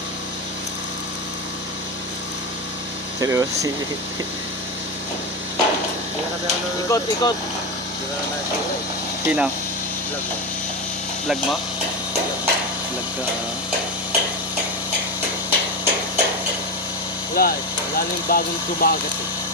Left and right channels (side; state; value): both; normal; correlation 0.17